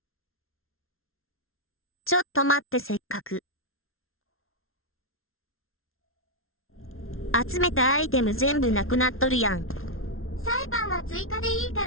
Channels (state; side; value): late; right; 0.61 ms